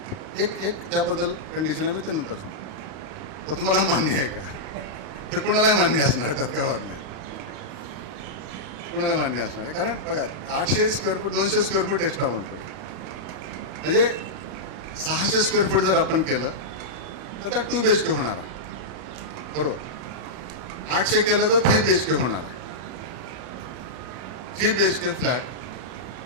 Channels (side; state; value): left; late; 31 ms